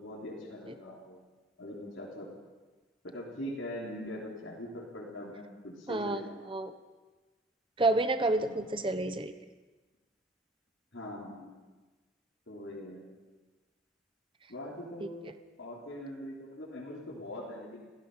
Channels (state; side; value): normal; both; correlation 0.48